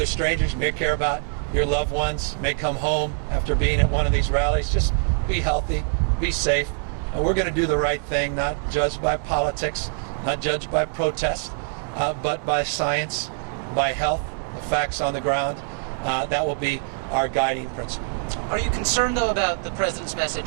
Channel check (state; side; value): silent; left; 58 dB below the other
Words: strangers, you may care about your loved ones, may come home after being at one of these rallies. Just be healthy, be safe. And we're going to do the right thing, not judged by politics, not judged by protest, but by science, by health, the facts on the ground. That will be our guiding principle. Are you concerned, though, about the president's